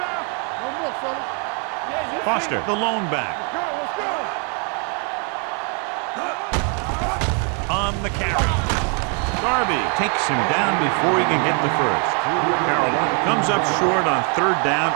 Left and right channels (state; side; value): quieter; left; 39.1 dB